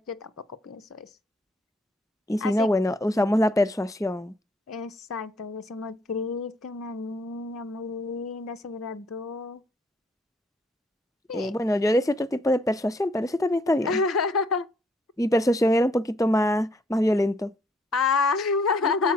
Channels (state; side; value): normal; both; correlation 0.67